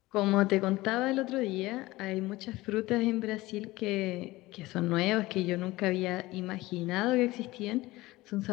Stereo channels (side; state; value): right; quieter; 19.3 dB